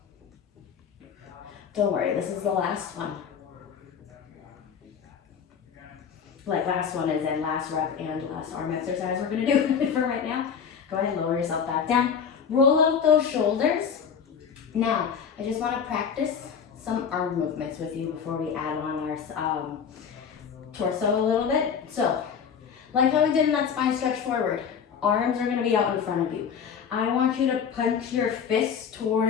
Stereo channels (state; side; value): quieter; right; 7.0 dB